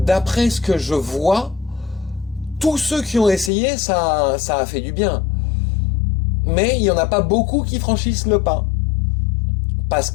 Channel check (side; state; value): right; drops out; at 3.5 s